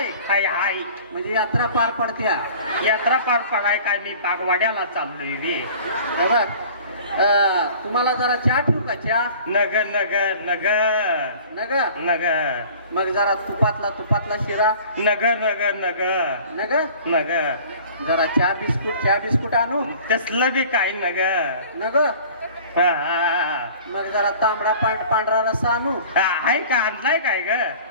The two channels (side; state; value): both; inverted; correlation -0.46